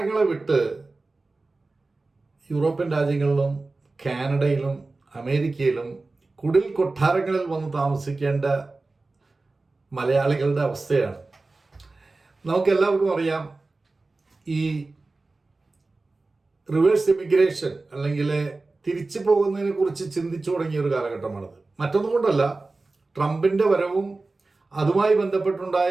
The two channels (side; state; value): left; quieter; 3.4 dB